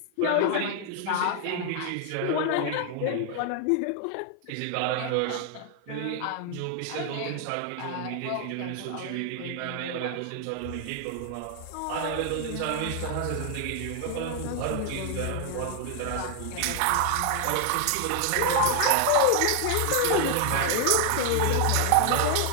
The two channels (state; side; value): different; both; correlation 0.00